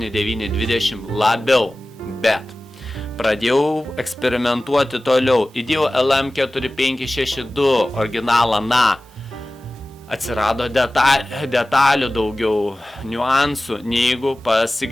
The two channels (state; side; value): normal; both; correlation 0.97